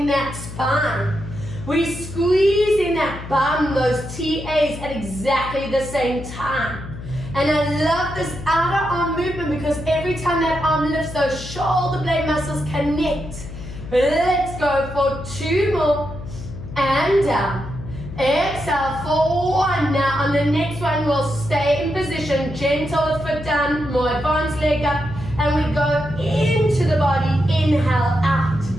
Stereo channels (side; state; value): left; noise; hum, 11 dB below the sound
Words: that spine. We squeeze in that bum, those TAs at exactly the same time. And I love this outer arm movement because every time that arm lifts, those shoulder blade muscles connect. Let's go for 2 more. And down. Exhale for 1. Now on the next one, we'll stay in position. Gentle foot down, more advanced leg up. And we go into the body. Inhale out.